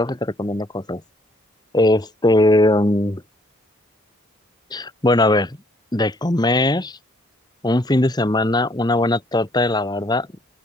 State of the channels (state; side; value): normal; both; correlation 0.64